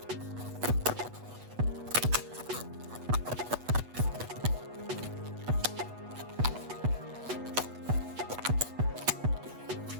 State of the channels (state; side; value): late; left; 8.2 ms